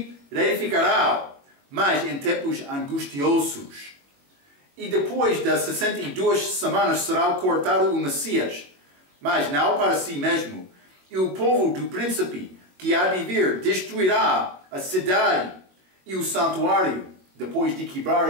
reedificarão, mas em tempos angustiosos. E depois das 62 semanas será cortado o Messias, mas não para si mesmo. E o povo do príncipe que há de vir destruirá a cidade e o santuário, depois de quebrar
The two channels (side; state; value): left; late; 21 ms